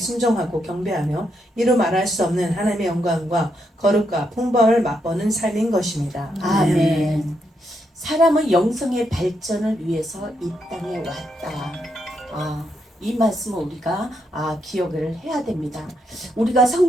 경배하며 이루 말할 수 없는 하나님의 영광과 거룩과 풍부함을 맛보는 삶인 것입니다. 아멘. 사람은 영성의 발전을 위해서 이 땅에 왔다. 이 말씀을 우리가 기억을 해야 됩니다. 우리가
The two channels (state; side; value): normal; both; correlation 0.79